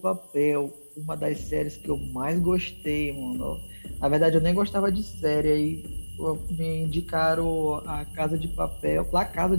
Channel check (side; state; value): both; inverted; correlation -1.00